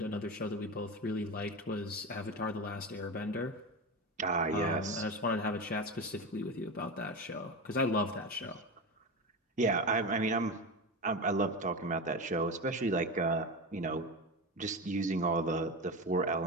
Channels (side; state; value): both; normal; correlation 0.21